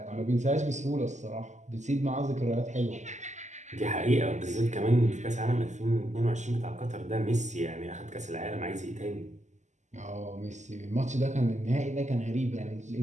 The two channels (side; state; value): left; late; 0.34 ms